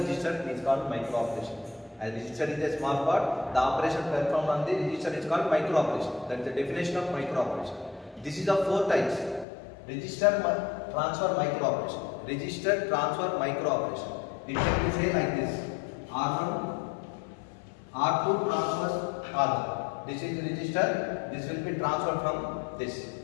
is called micro operation. As register is a small part, the operation performed on the register is called micro operation. That is the definition of micro operation. This is of 4 types. Register transfer micro operation. Register transfer micro operation. It can be say like this: R1, R2 transfers R1. This is register. This will be transferred from this.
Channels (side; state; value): right; drops out; at 9.5 s